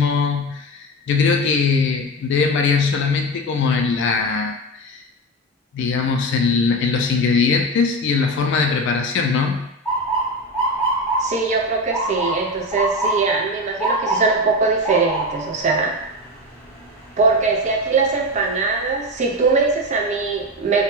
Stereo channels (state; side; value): normal; both; correlation 0.20